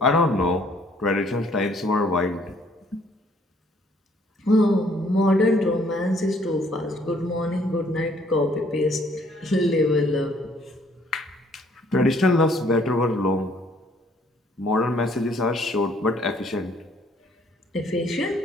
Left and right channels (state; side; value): normal; both; correlation 0.62